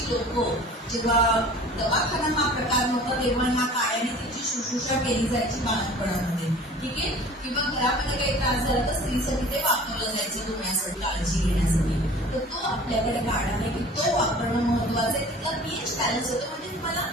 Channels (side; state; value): both; normal; correlation 0.45